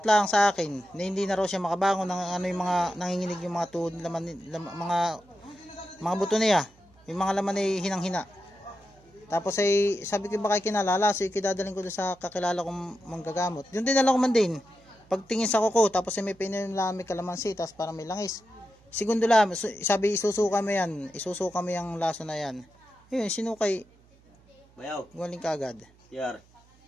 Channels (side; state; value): right; noise; hum, 29 dB below the sound